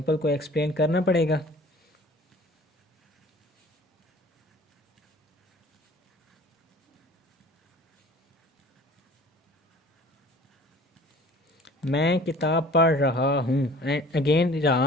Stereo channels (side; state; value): both; normal; correlation 0.48